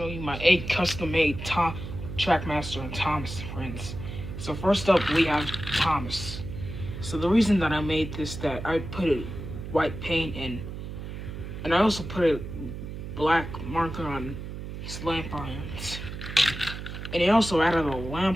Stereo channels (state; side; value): noise; right; hum, 8 dB below the sound